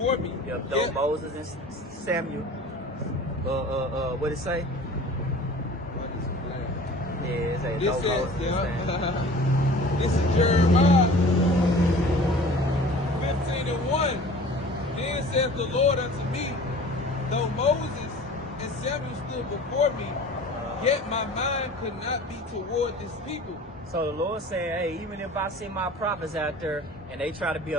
me. Yep, though Moses and Samuel. What it say? Yeah, it say This though says, Moses and Samuel. This is Jeremiah 15 and 1. Then saith the Lord unto me, though Moses and Samuel stood before me, yet my mind could not be toward this people. So the Lord said, hey, even if I send my prophets out there and they try to be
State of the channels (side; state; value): both; normal; correlation 0.43